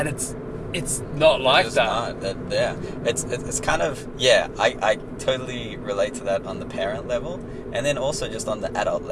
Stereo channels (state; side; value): identical; both; correlation 1.00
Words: it's not like it's that. Not. Yeah. It's kind of, I totally relate to that on the parent level, and then also just on the adult